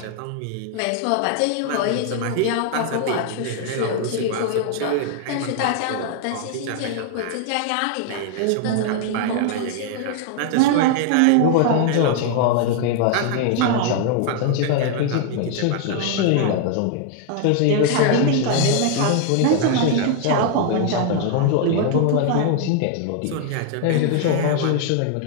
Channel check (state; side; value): different; both; correlation 0.00